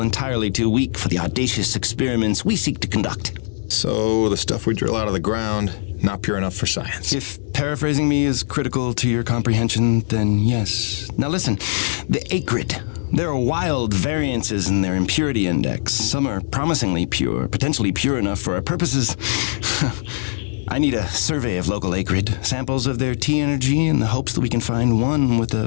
too weak for the audacious experiments we seek to conduct. So, the stuff we drill out of the ground, not pure enough for science. If paraphrasing me is critical to your comprehension, then yes. Now listen, the acrid, There are wild variances in their impurity index. Some are promisingly pure, potentially pure enough for our purposes. I need a survey of local acrid, samples of their T energy in the hopes that we can find one with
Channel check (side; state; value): right; silent; digital silence